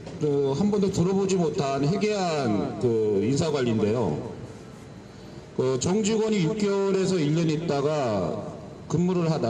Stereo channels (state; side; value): identical; both; correlation 1.00